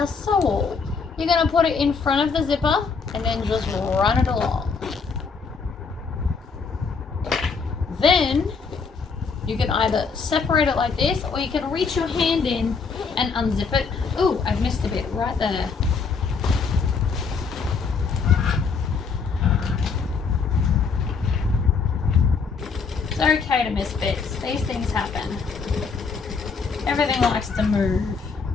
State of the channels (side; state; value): right; quieter; 5.2 dB